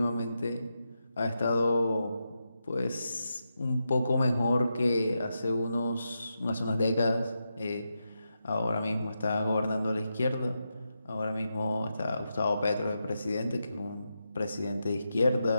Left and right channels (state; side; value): inverted; both; correlation -0.87